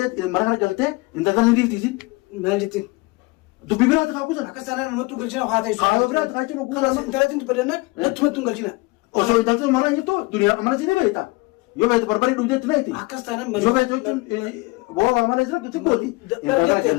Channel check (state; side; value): quieter; right; 24.8 dB